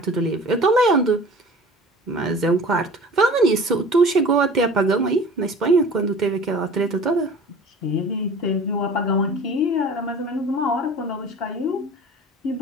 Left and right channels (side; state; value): both; normal; correlation 0.42